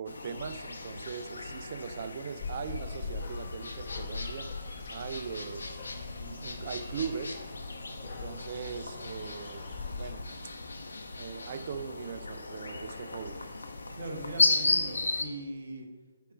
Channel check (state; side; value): inverted; both; correlation -0.81